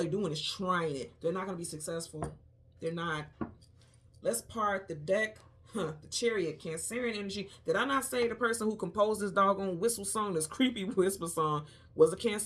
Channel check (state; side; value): identical; both; correlation 1.00